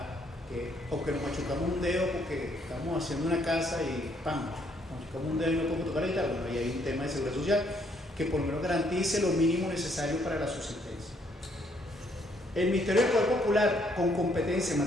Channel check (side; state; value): both; normal; correlation 0.69